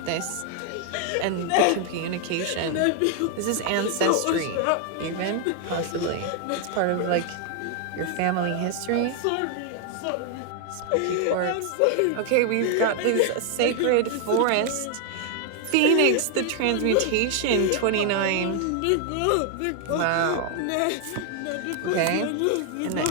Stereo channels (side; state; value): both; different; correlation 0.00